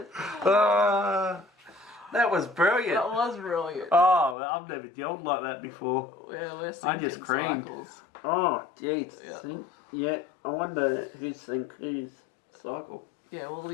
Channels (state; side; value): drops out; right; at 4.4 s